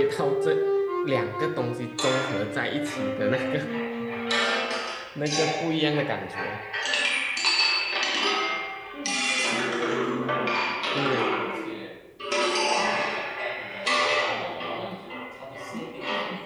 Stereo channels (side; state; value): both; identical; correlation 1.00